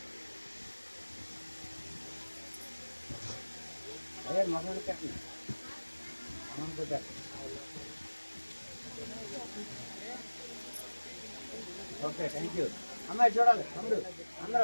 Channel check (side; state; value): both; inverted; correlation -1.00